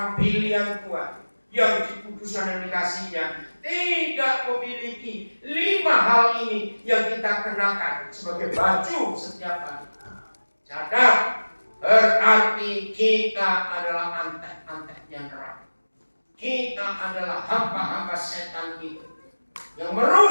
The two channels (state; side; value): inverted; both; correlation -1.00